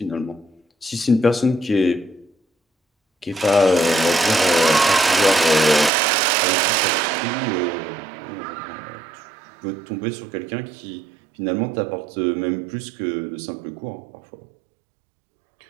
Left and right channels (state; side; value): drops out; left; at 5.9 s